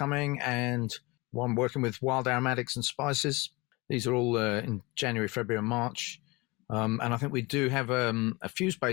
and one working with wild aromatics and spices. These are all in January, February, and March, and I think we do have a few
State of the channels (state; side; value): quieter; right; 24.6 dB